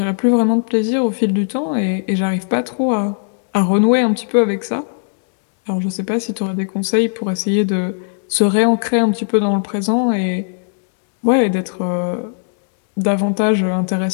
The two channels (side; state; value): right; silent; digital silence